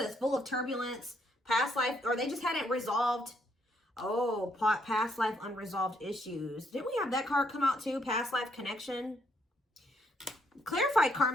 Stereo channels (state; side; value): normal; both; correlation 0.72